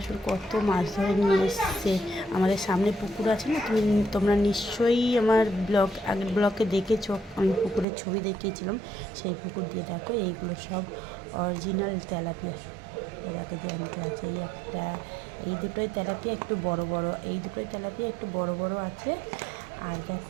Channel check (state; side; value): drops out; left; at 7.9 s